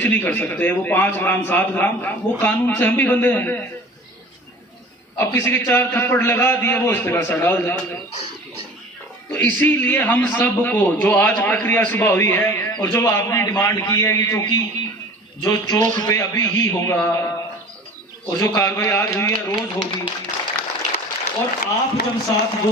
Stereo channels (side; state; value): both; normal; correlation 0.43